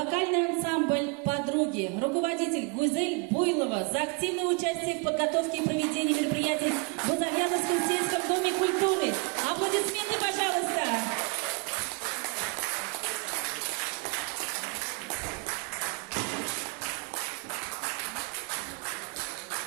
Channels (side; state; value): left; quieter; 32.7 dB